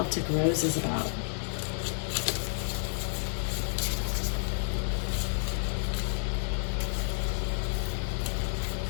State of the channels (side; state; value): right; silent; digital silence